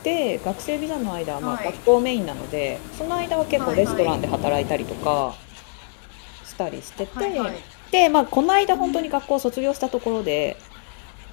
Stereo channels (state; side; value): silent; right; 63 dB below the other